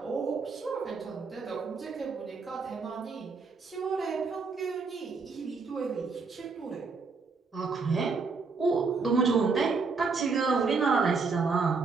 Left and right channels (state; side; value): quieter; left; 4.6 dB